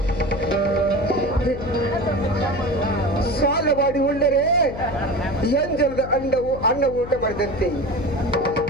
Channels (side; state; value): left; noise; hum, 10 dB below the sound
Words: ಸಾಲ ಮಾಡಿ ಉಳ್ಳರೆ ಎಂಜಲದ ಅನ್ನ ಊಟ ಮಾಡಿದಂತೆ,